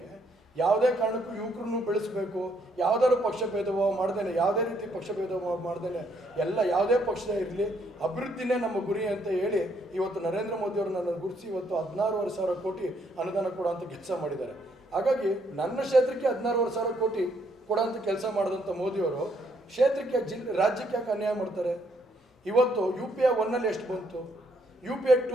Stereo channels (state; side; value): normal; both; correlation 0.71